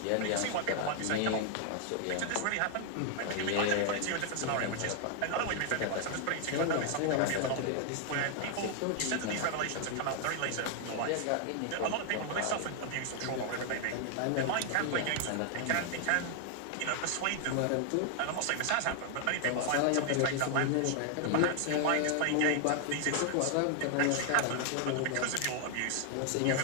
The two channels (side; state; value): both; different; correlation 0.00